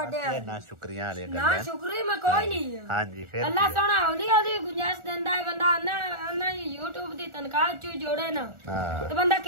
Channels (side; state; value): left; late; 1.4 ms